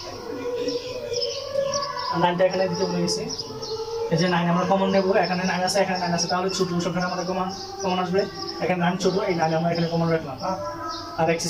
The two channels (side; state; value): both; identical; correlation 1.00